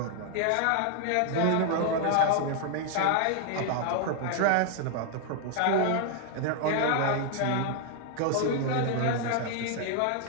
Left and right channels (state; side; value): different; both; correlation 0.00